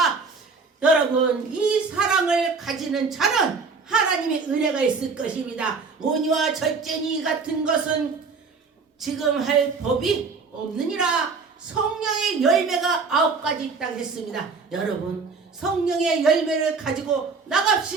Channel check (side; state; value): left; quieter; 4.7 dB